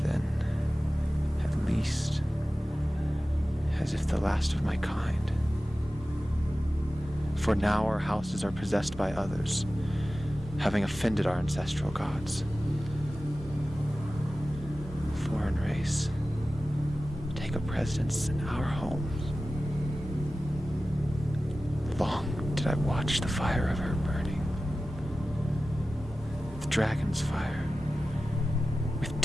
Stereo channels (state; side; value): normal; both; correlation 0.95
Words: then at least as if the last of my kind. For now our houses are possessed by others, having offended our ancestral gods. Foreign race, take a precedence in our homes. Long did I watch the fire of her burning. The dragon's fire, with